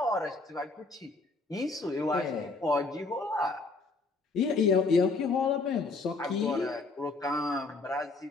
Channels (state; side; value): quieter; right; 3.7 dB